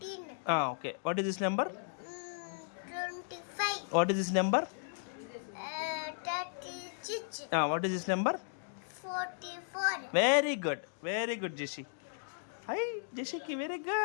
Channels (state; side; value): silent; right; digital silence